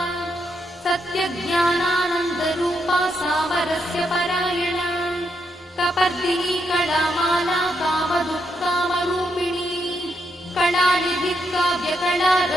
सत्यज्ञानानन्दरूपा सामरस्य परायणा कपर्दिनी कलामाला कामदुःकामरूपिणी कलानिधिः काव्यकला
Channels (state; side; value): normal; both; correlation 0.80